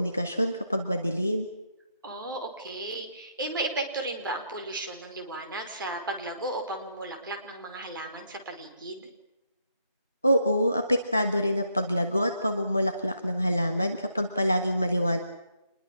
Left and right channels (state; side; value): inverted; both; correlation -0.75